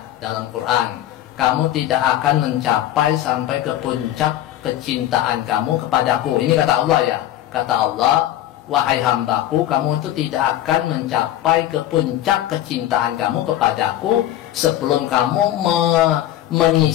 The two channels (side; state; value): right; quieter; 12.9 dB